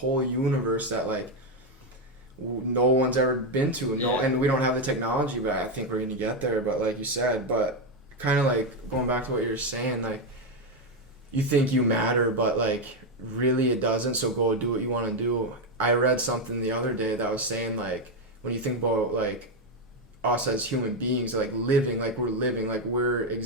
universe that like no one's ever been to. And we don't have the technology, but I think we're gonna get there. But like you said, but kind of like going back to what you're saying, like you think you matter, but like really it doesn't. So go do what you want to do. I read something the other day that was saying like when you think about like us as human beings, like living, like we're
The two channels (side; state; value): both; normal; correlation 0.06